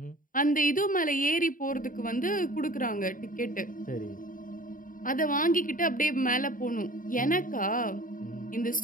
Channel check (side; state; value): right; late; 0.39 ms